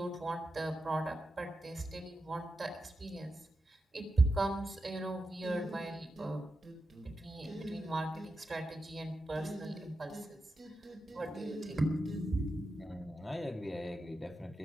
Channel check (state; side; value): normal; both; correlation 0.89